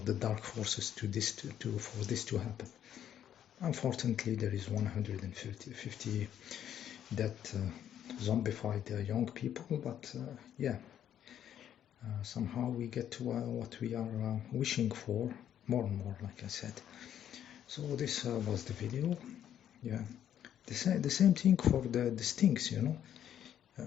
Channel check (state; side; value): quieter; right; 10.2 dB